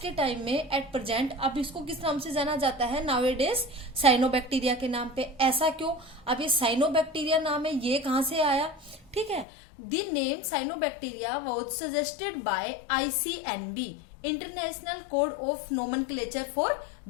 टाइम में एट प्रेजेंट अब इसको किस नाम से जाना जाता है, नाउएडेज साइनोबैक्टीरिया के नाम पे। ऐसा क्यों? अब ये साइनोबैक्टीरिया नाम है, ये कहां से आया? ठीक है, the name cyanobacteria was suggested by ICNB, international code of nomenclature for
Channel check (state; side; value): drops out; right; at 9.5 s